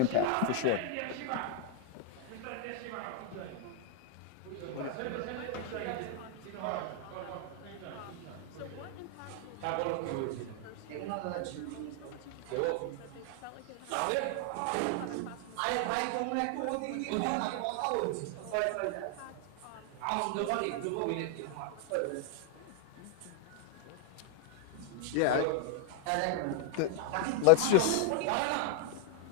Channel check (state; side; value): different; both; correlation 0.00